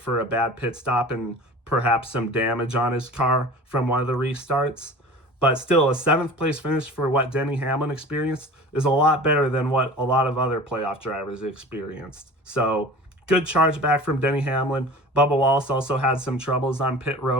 a bad pit stop and perhaps some damage on his car from one of the restarts. But still, a 7th place finish for what Denny Hamlin experienced is a lot better than what a lot of other playoff drivers experienced. So, good charge back from Denny Hamlin. Bubba Wallace also had some troubles on pit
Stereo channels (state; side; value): normal; both; correlation 0.39